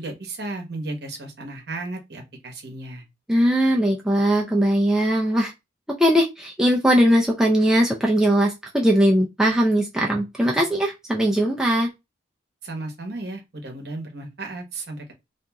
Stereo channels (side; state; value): both; normal; correlation 0.83